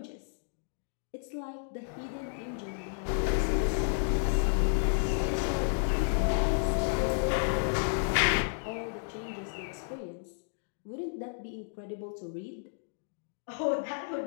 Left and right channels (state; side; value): silent; right; digital silence